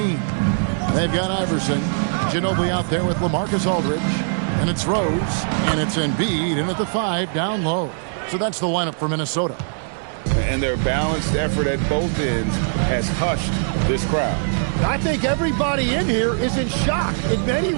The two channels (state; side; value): silent; left; digital silence